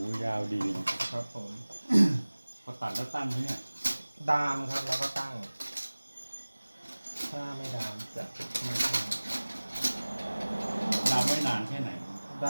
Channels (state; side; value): inverted; both; correlation -1.00